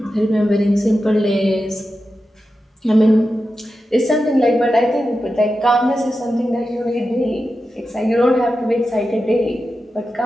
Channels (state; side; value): normal; both; correlation 0.91